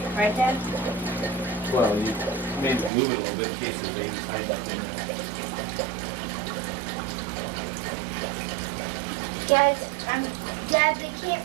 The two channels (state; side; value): drops out; left; at 2.9 s